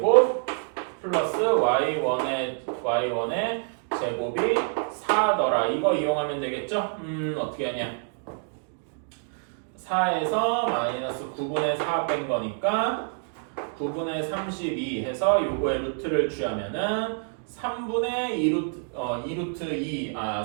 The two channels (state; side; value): silent; left; 59 dB below the other